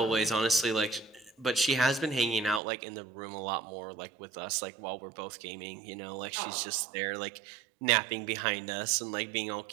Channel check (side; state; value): left; drops out; at 2.6 s